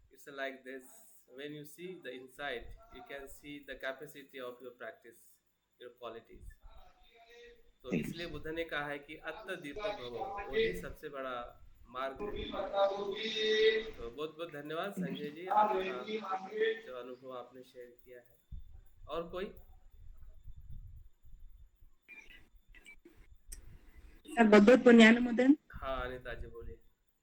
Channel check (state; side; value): identical; both; correlation 1.00